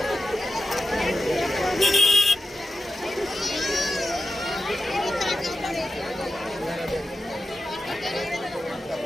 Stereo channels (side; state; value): both; normal; correlation 0.90